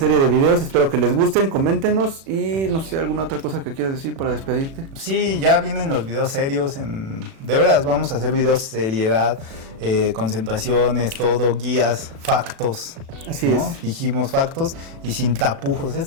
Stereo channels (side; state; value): left; late; 36 ms